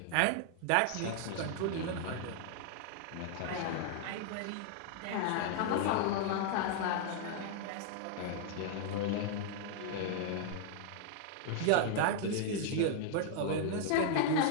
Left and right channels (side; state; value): both; different; correlation 0.00